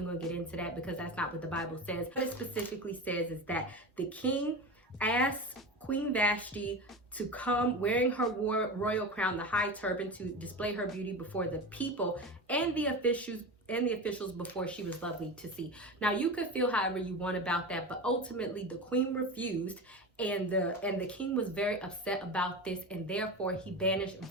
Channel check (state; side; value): normal; both; correlation 0.26